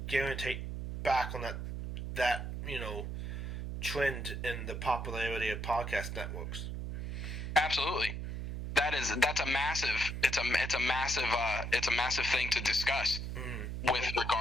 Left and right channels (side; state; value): right; noise; hum, 5 dB below the sound